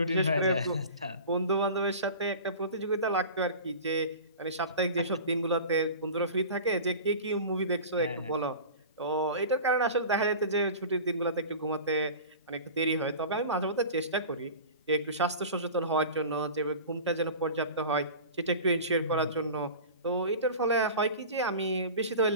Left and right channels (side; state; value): both; inverted; correlation -0.36